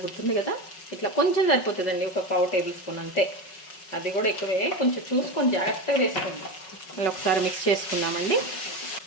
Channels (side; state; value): right; late; 5.4 ms